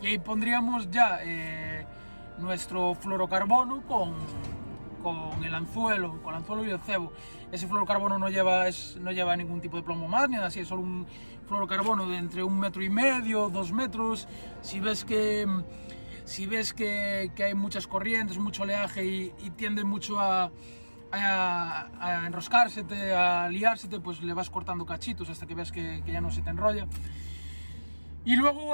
y ahí pondríamos ya nuestro fluorocarbono con el anzuelo, y el cebo. Ese fluorocarbono no lleva ningún tipo de plomo más, ni nada así, es solo un fluorocarbono de entre 1,5 metros, 2 metros. Si ves que hay muchas corrientes, mucho oleaje y tiende mucho a enroscársete, a liársete, pues le vas cortando cachitos hasta que ves que ya no se te enrolla. Y luego,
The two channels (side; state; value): both; inverted; correlation -1.00